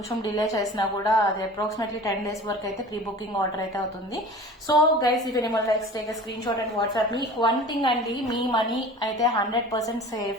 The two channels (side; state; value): both; normal; correlation 0.40